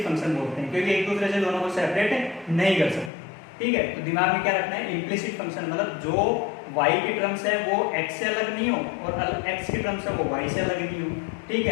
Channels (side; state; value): right; drops out; at 3.1 s